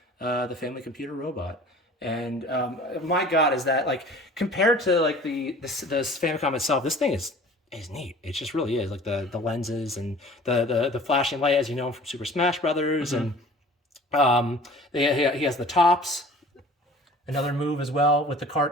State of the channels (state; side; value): normal; both; correlation 0.46